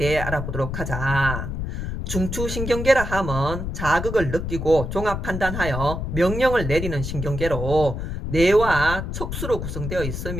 알아보도록 하자. 중추신경계라 함은 자극을 느끼고 종합 판단하여 명령을 내리는 신경계로 뇌와 척수로 구성되어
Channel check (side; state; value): left; noise; rumble, 5 dB below the sound